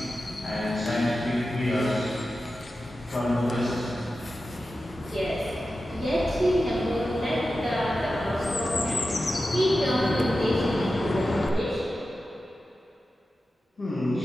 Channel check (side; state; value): both; normal; correlation 0.92